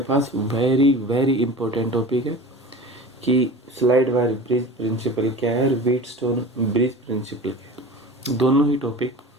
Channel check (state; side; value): normal; both; correlation 0.35